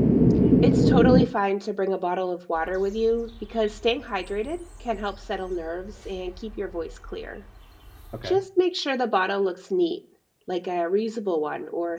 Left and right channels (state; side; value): identical; both; correlation 1.00